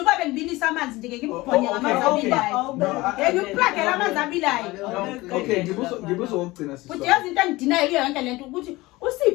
kwabe ngibilisa amanzi nje ngibubhonye ngamanzi abilayo ngikuplagela amanzi abilayo okay ngibuza ukugcina sis futhi yazi into engidinayo iyo yonke lento ukuthi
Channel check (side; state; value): right; quieter; 20.3 dB